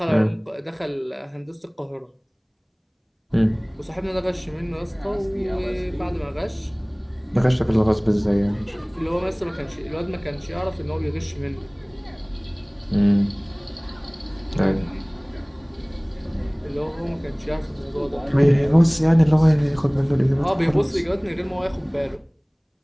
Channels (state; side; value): identical; both; correlation 1.00